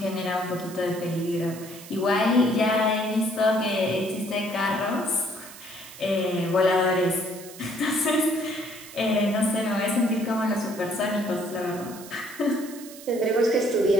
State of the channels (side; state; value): right; noise; hiss, 16 dB below the sound